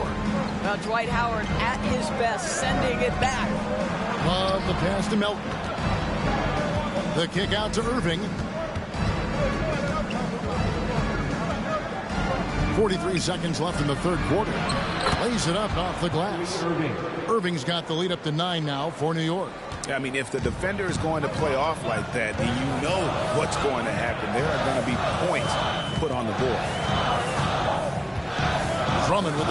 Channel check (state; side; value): identical; both; correlation 1.00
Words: Now Dwight Howard at his best, sending it back. Love the pass to Melton. The kick out to Irving. 43 seconds left in the third quarter. Lays it up off the glass. Irving's got the lead up to 9 now for New York. I mean, if the defender is going to play off like that, then you know what's going to happen. There are going to be points put on the board. Drummond with